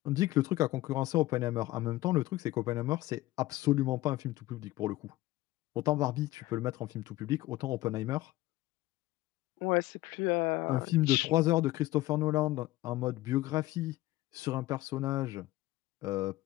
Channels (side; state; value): right; quieter; 17.5 dB